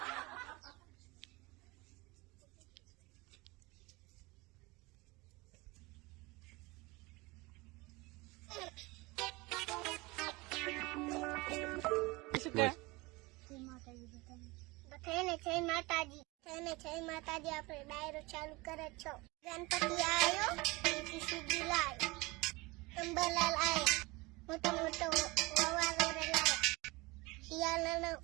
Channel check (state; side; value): quieter; left; 23.6 dB